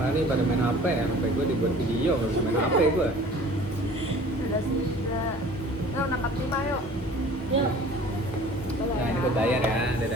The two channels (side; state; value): both; normal; correlation 0.47